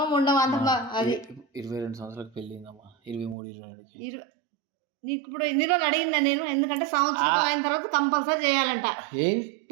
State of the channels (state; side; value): drops out; left; at 3.4 s